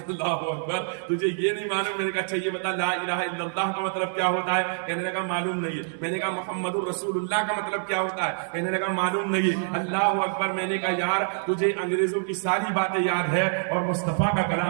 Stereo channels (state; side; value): silent; left; digital silence